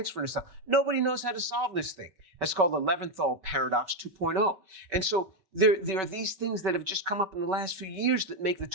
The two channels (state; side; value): late; left; 5.3 ms